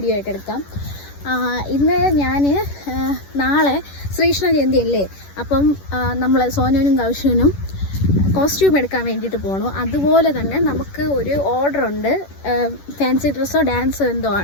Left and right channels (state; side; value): late; right; 11 ms